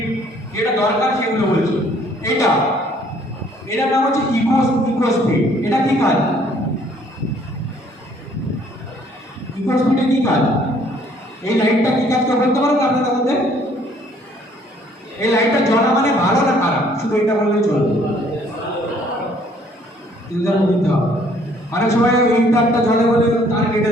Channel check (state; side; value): normal; both; correlation 0.61